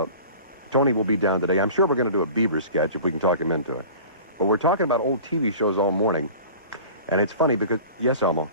Tony will be down today. I'm sure we're going to do a Beaver sketch if we can talk him into it. But we're talking about old TV shows all morning. And it's funny because, yes, Elmo.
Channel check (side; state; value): both; inverted; correlation -0.41